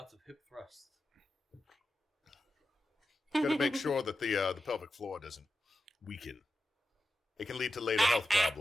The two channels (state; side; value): normal; both; correlation 0.91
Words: hip thrusts. Got to make sure that the pelvic floor doesn't weaken. It can lead to later health